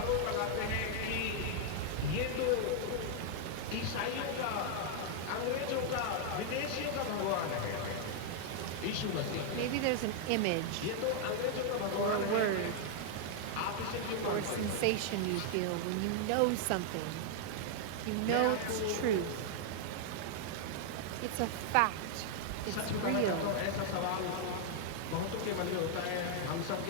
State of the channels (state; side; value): different; both; correlation 0.00